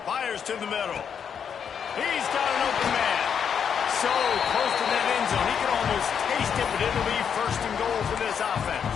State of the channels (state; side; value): quieter; right; 7.5 dB